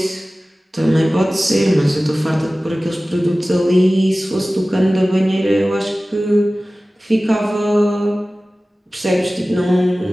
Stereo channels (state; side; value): normal; both; correlation 0.97